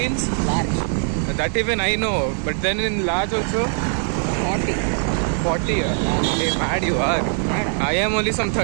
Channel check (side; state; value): left; silent; 58 dB below the other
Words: large, That even I know. But then in large also? 40. 40. Hey, mad you are. Yeah. I am only some